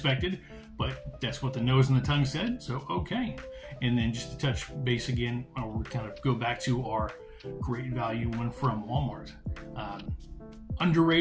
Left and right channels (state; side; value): identical; both; correlation 1.00